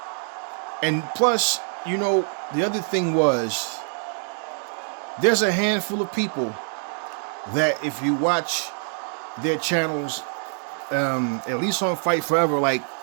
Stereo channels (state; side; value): silent; left; 58 dB below the other